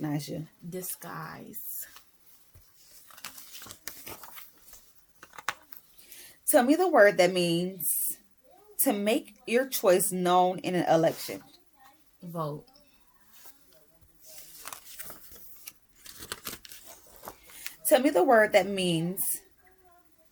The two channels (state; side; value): identical; both; correlation 1.00